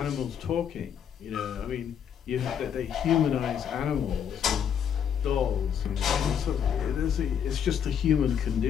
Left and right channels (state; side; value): quieter; right; 8.3 dB